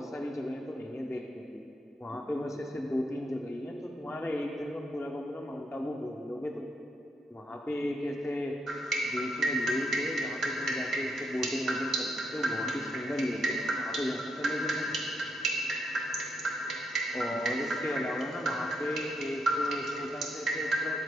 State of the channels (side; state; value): both; normal; correlation 0.78